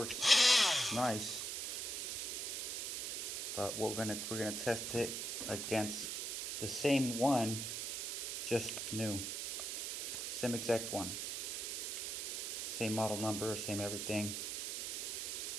nice, but we're gonna test it against the same one, just new. Same exact one. Same model number, same everything.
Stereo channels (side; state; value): right; noise; hiss, 2 dB below the sound